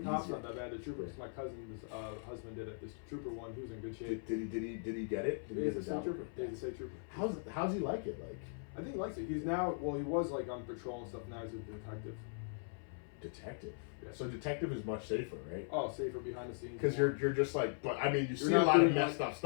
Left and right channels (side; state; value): right; silent; 52 dB below the other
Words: Cops not that bad. The troopers. My cousin's husband did it. This trooper one, he was in good shape. Did he get it? He's a state trooper. Yeah, he's a state trooper. How's he like it? Like, I think he likes it. He's now, well, he was like on patrol and stuff. Now he's a detective. Detective. Yeah. So detective is much safer, right? Oh, safer behind the scenes. Because you're just like, but I mean, you see a lot of messed up